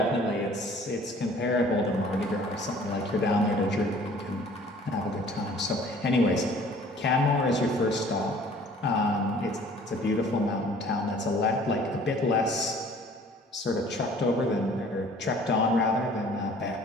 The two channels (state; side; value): normal; both; correlation 0.52